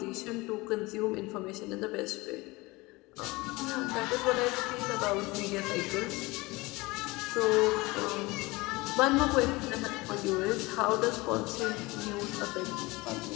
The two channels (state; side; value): quieter; right; 22.6 dB